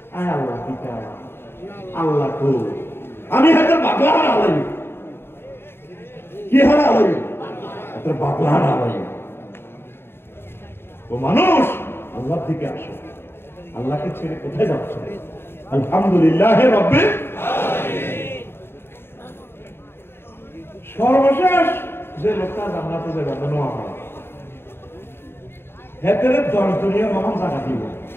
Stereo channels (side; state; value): right; late; 0.11 ms